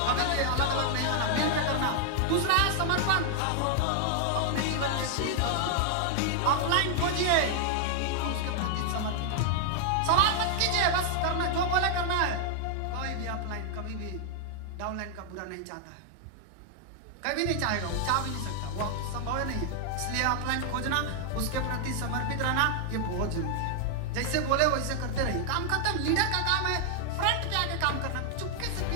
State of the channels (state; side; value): different; both; correlation 0.00